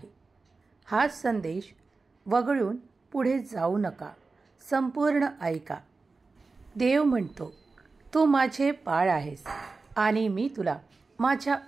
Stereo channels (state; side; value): quieter; left; 4.0 dB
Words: हा संदेश वगळून पुढे जाऊ नका, संपूर्ण ऐका. देव म्हणतो, तू माझे बाळ आहेस आणि मी तुला माझ्या